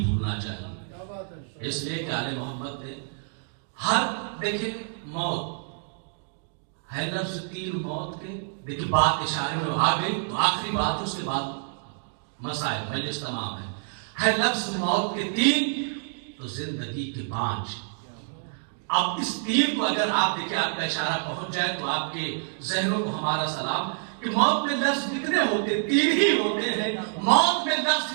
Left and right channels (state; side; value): silent; left; digital silence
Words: بھولنا چاہیے. اس لیے کہ آل محمد نے دیکھیں موت ہے لفظ تیر موت کے، دیکھیں بات اشارے میں آ گئی، تو آخری بات اس کے بعد مسائل مجلس تمام ہے لفظ موت کے 3 تو زندگی کے 5. اب اس 3 کو اگر آپ دیکھیں، آپ کا اشارہ پہنچ جائے تو آپ کے ذہنوں کو ہمارا سلام کہ موت میں لفظ کتنے ہوتے ہیں؟ 3 ہی ہوتے ہیں. موت میں